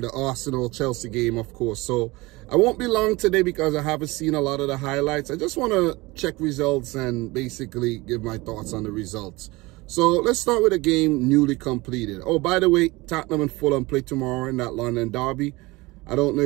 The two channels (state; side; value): quieter; left; 22.3 dB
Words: Arsenal-Chelsea game, of course. So, I won't be long today because I haven't seen a lot of the highlights. I just want to check results and basically give my thoughts on the results. So, let's start with a game newly completed. Oh, by the way, Tottenham and Fulham play tomorrow in that London derby. I don't know